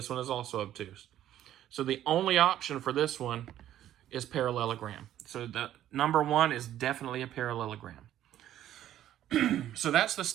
one is also obtuse. So the only option for this one is parallelogram. So the number 1 is definitely a parallelogram. So that's the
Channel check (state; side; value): quieter; left; 12.1 dB